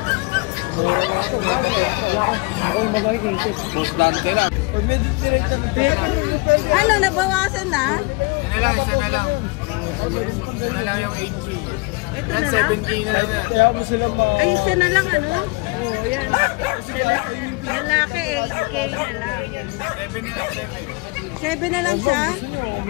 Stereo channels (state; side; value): quieter; right; 26.7 dB